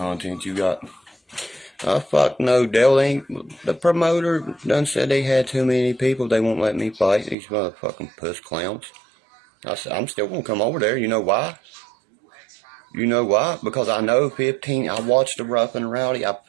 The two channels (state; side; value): drops out; left; at 7.4 s